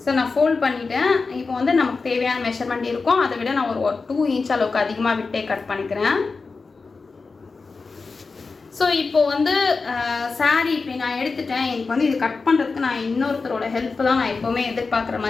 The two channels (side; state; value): right; quieter; 4.3 dB